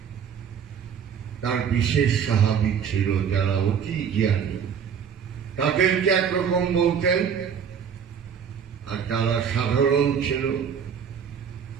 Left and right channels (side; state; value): left; quieter; 7.5 dB